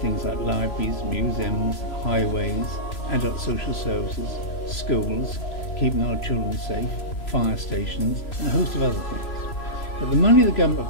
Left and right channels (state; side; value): late; right; 3.0 ms